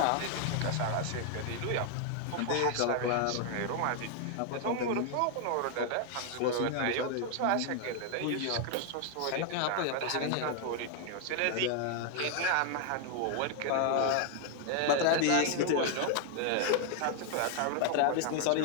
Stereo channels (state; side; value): different; both; correlation 0.00